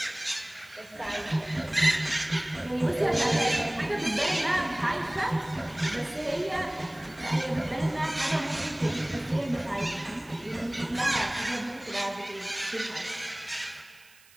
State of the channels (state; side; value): noise; right; hiss, 26 dB below the sound